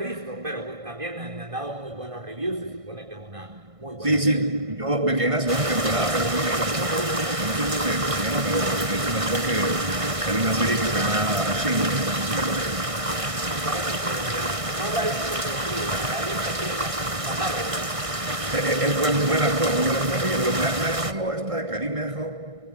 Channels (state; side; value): late; left; 1.6 ms